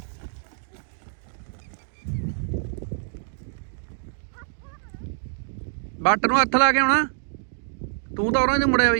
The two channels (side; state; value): left; silent; digital silence